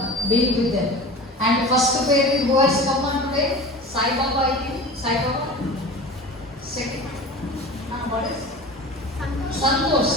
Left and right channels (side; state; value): both; normal; correlation 0.35